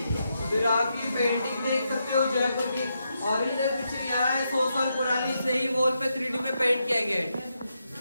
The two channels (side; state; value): both; inverted; correlation -0.83